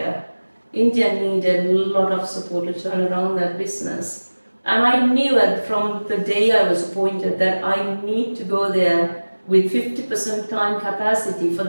needed a lot of support to turn around that business. And I knew that from the day I was appointed that I need to go there with 50% time capacity for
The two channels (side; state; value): both; inverted; correlation -1.00